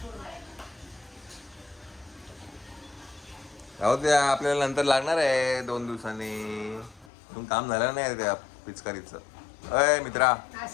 अहो ते आपल्याला नंतर लागणार आहे 2 दिवसांनी. तुम काम झालं नाही त्या पिचकारीचं. अय मित्रा,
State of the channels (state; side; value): drops out; right; at 7.1 s